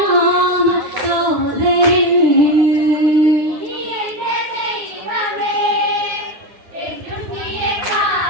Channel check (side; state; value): left; late; 10 ms